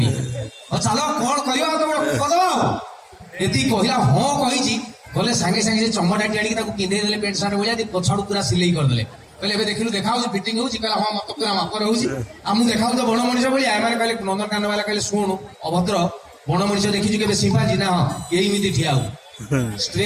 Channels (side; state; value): both; identical; correlation 1.00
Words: चलो कोन करियो तो कदो एती कहिला हां कहिछि बोले संगे संगे से चमड़ाटी आडी ताको पिंदे देले पेंट शर्ट बोलिया दी पछाडू पूरा सिलाई कर देले कहले एबे देखिलु देखाउ फिटिंग होछि कहला हां मत पूरा मापर होछि आमु देखाउ तो बण मनिष बोलिया एमाने कहले नंदनकानन वाला कहले सुन अभद्र बण मनिष देखिछु केबे सिंपाजी ना हां एही मिति ठियाउ